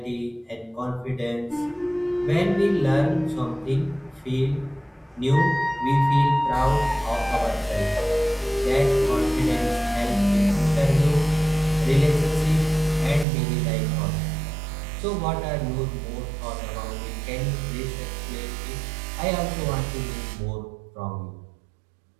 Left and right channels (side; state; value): left; drops out; at 13.2 s